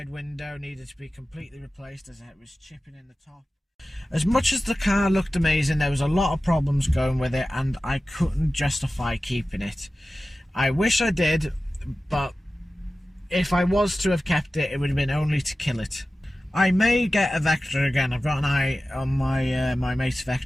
window needed to be completely replaced as it was chipping in the top. As much as the car looked amazing, there was a lot of problems going with it, and I couldn't justify keeping it. I wish I did, but if I was to have kept it, it would have been only to kill it. I may get a Vectra again. I've got an eye on my my mate's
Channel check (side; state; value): both; normal; correlation 0.95